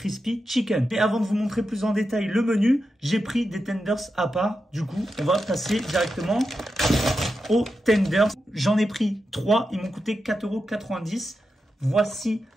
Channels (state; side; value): normal; both; correlation 0.89